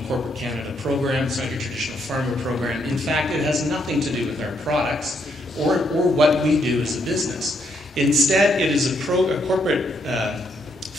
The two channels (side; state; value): both; normal; correlation 0.75